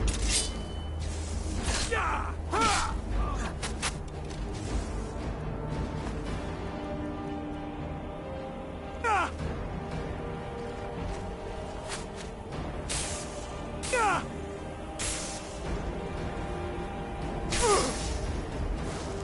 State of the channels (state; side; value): identical; both; correlation 1.00